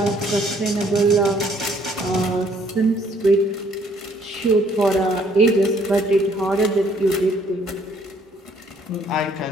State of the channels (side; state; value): both; normal; correlation 0.63